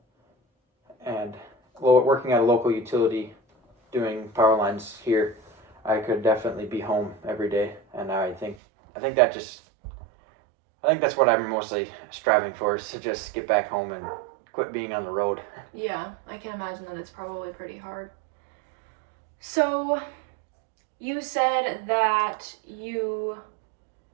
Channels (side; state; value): left; drops out; at 8.6 s